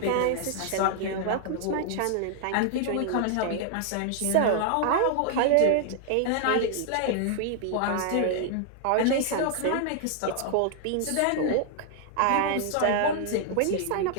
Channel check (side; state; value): both; different; correlation -0.01